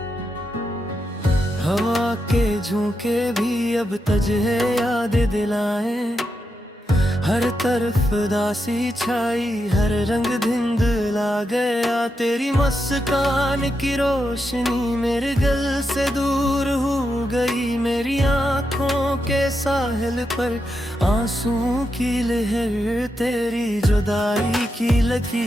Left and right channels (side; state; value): both; normal; correlation 0.85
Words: हवा के झोंके भी अब तुझे याद दिलाएं। हर तरफ दासी छाई, हर रंग धिंधला गया। तेरी मुस्कान की रोशनी मेरे दिल से दूर हो गई। मेरी आँखों के साहिल पर आंसुओं की लहर तेरी जुदाई की